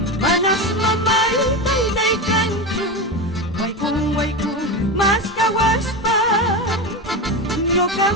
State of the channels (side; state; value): both; normal; correlation 0.20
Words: manas mamaita ilaykanchu waykun mas kawaspa